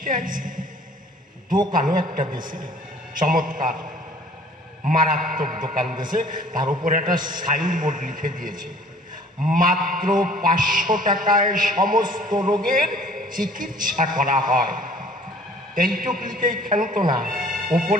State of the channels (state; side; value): normal; both; correlation 0.53